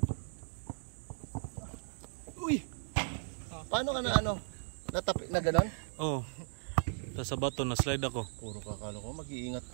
Uy! Paano ka na ano? Natapik na gano'n? Oh. Tapos sa bato na slide ako. Puro kakalo ko, mag-iingat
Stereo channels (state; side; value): silent; left; digital silence